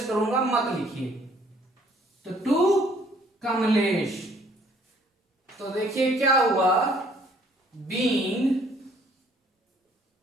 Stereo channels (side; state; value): both; normal; correlation 0.61